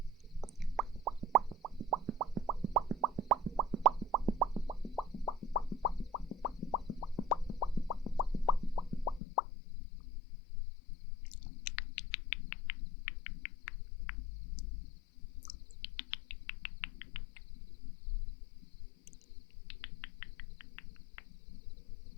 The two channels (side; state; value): right; drops out; at 9.2 s